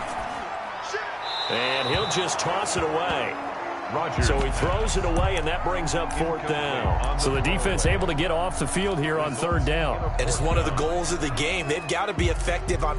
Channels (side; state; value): both; identical; correlation 1.00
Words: And he'll just toss it away. Rodgers. So he throws it away, and that brings up 4th down. So the defense able to get off the field here on 3rd down. And it's one of the goals of the game. They've got to be effective on